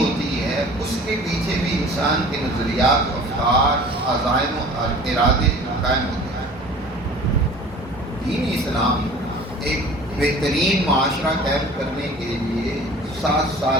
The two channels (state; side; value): normal; both; correlation 0.44